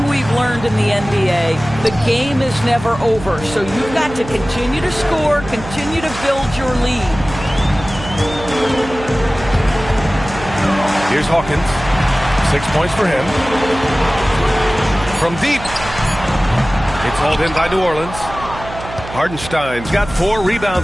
we've learned in the NBA, the game is never over. So you've got to continue to score, continue to build your lead. Here's Hawkins. 6 points for him. From deep. It's hauled in by New Orleans. Hardenstein's got 4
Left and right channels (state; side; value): noise; right; hum, 12 dB below the sound